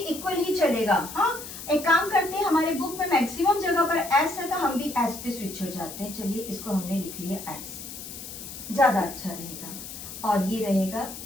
ही चलेगा। हाँ, एक काम करते हैं, हमारे बुक में मैक्सिमम जगह पर एस है तो हम भी एस पे स्विच हो जाते हैं। चलिए इसको हमने लिख लिया एस, ज्यादा अच्छा रहेगा। और ये रहेगा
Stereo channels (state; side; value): noise; left; hiss, 11 dB below the sound